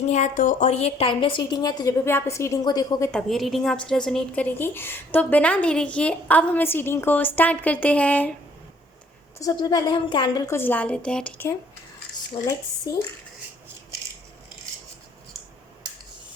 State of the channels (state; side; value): normal; both; correlation 0.62